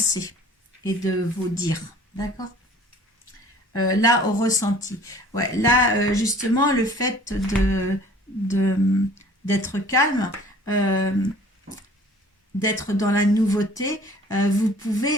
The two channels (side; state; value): both; normal; correlation 0.50